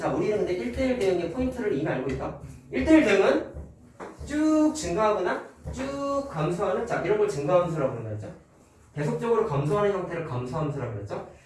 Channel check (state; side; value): identical; both; correlation 1.00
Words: 우리는 근데 1대1 대응의 포인트를 이미 알고 있다. 1대1 대응은 쭉 증가하거나 쭉 감소하는, 자, 이런 걸 증가함수라고 부른다 했죠. 계속적으로 감소하는 형태를 감소함수라고 그랬죠.